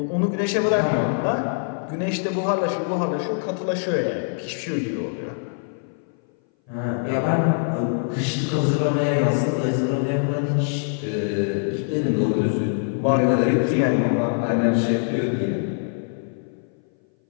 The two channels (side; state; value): right; silent; 59 dB below the other